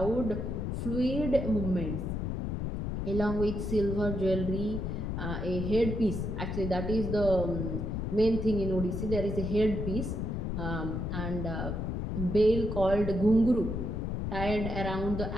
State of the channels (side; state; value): left; noise; rumble, 2 dB below the sound